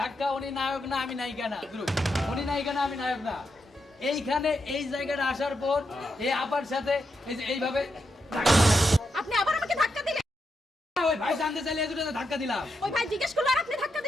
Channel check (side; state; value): both; normal; correlation 0.84